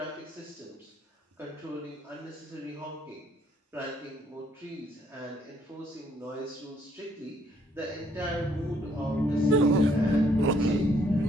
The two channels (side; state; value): both; normal; correlation 0.67